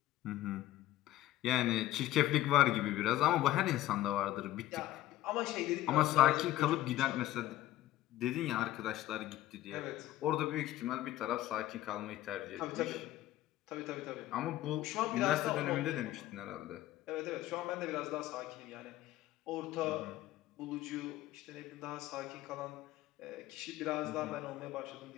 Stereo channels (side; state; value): right; quieter; 14.7 dB